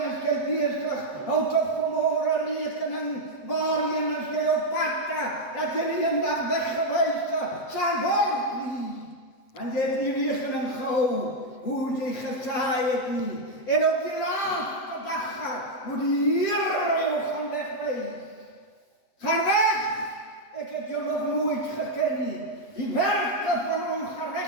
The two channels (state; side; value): late; right; 7.9 ms